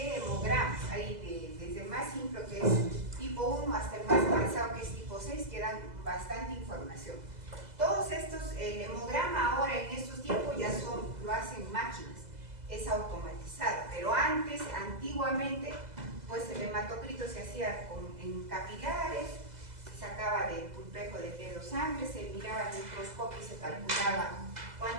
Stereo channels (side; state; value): left; late; 2.0 ms